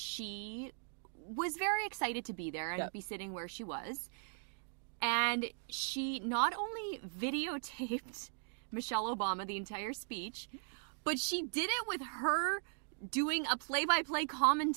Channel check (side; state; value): left; silent; digital silence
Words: was very excited to be there and Yep. be sitting where she was. And she not only videotaped Michelle Obama the entire speech, but she did it with her doing a play-by-play